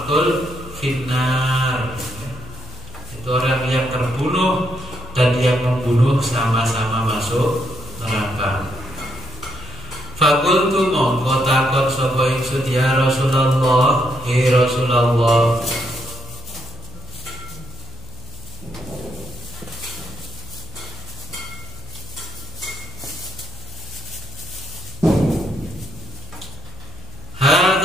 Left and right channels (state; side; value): noise; left; hum, 16 dB below the sound